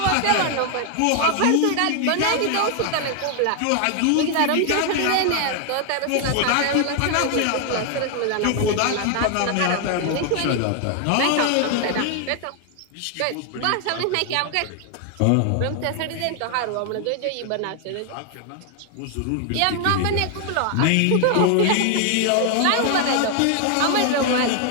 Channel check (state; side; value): different; both; correlation 0.00